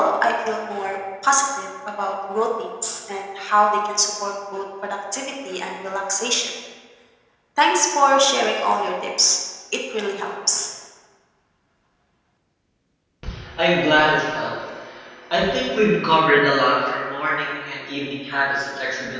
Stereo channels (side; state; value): both; identical; correlation 1.00